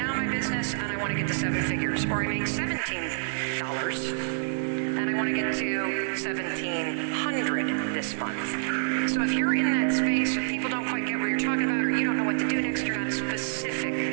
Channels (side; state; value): left; silent; digital silence